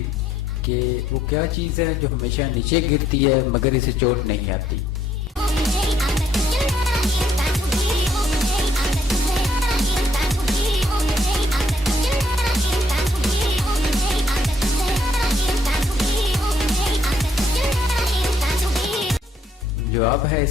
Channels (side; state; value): both; normal; correlation 0.68